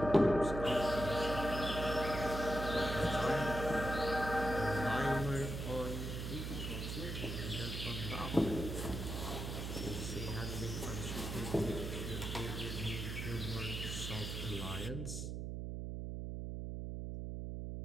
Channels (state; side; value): noise; right; hum, 4 dB below the sound